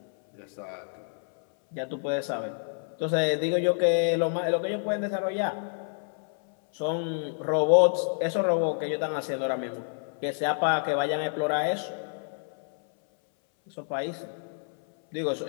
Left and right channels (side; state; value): right; silent; 59 dB below the other